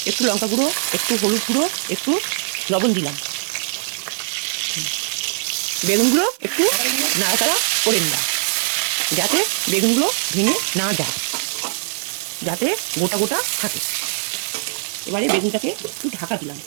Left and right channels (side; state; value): left; silent; 65 dB below the other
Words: একটু লঙ্কা গুঁড়ো, একটু হলুদ গুঁড়ো, একটু লবণ দিলাম। বেগুনগুলো একটু নাড়াচাড়া করে নিলাম, যাতে বেগুনগুলো ভেঙে না যায়, যাতে গোটা গোটা থাকে। এবারে বেগুনটাকে একটু ঢাকা দিলাম।